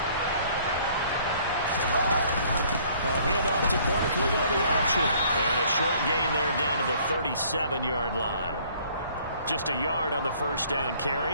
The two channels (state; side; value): inverted; both; correlation -0.58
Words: A handoff to Barkley on the option. And a short gain there down to the 37-yard line. Just a yard on the first down